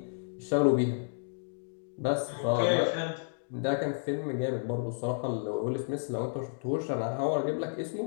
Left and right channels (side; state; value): right; silent; digital silence